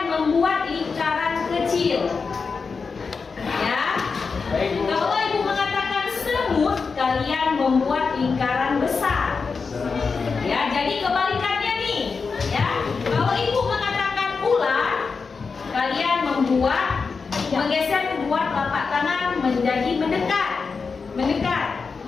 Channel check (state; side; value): quieter; right; 5.0 dB